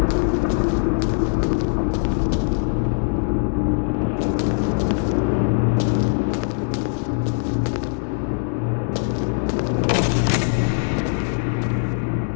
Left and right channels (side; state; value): right; silent; 65 dB below the other